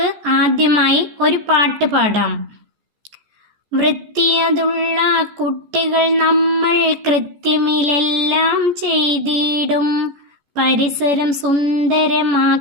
ആദ്യമായി ഒരു പാട്ട് പാടാം. വൃത്തിയതുള്ള കുട്ടികൾ നമ്മൾ കൃത്യമിലെല്ലാം ചെയ്തിടും. പരിസരം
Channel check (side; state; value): left; late; 14 ms